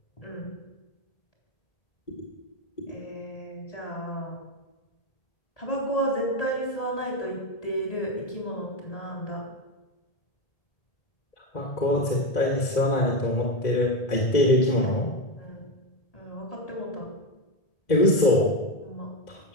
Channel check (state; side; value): late; right; 1.8 ms